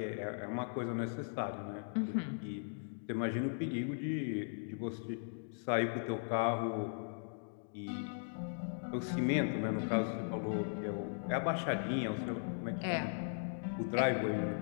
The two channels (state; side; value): silent; right; digital silence